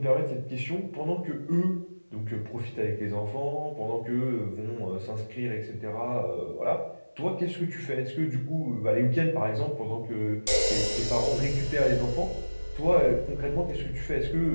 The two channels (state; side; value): inverted; both; correlation -1.00